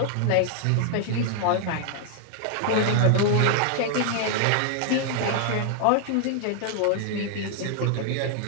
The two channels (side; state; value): both; different; correlation 0.00